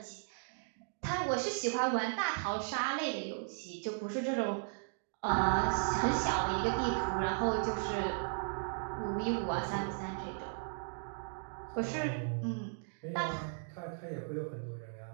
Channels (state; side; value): silent; left; digital silence